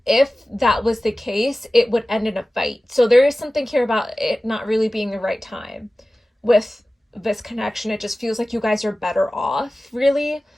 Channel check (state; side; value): normal; both; correlation 0.96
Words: if that was the case, it would end in a fight. So there is something here about it not really being the right time with this connection. It just feels like you guys are better off, really.